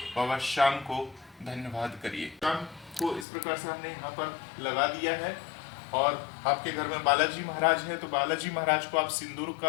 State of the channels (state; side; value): drops out; right; at 3.2 s